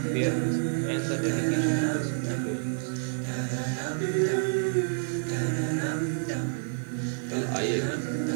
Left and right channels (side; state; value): left; silent; 59 dB below the other